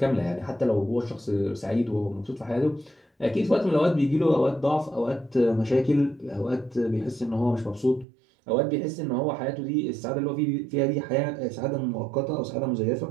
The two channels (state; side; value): drops out; left; at 8.1 s